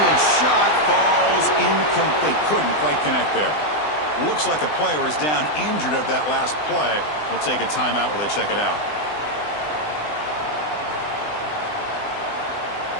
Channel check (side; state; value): right; late; 20 ms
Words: shot falls incomplete. Couldn't quite connect there. Looks like a player is down injured at that last play. We'll take a timeout while they check it out.